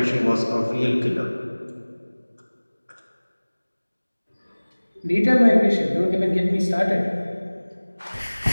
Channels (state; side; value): inverted; both; correlation -1.00